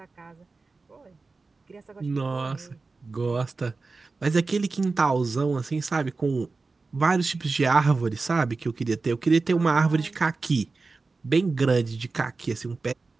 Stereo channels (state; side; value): quieter; left; 3.9 dB